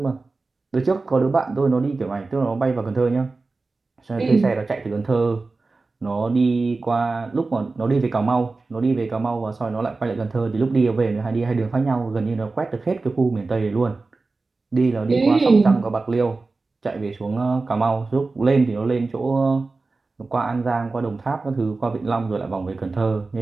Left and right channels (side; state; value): left; quieter; 3.7 dB